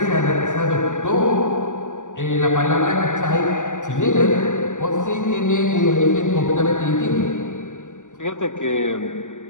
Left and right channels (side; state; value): right; late; 0.86 ms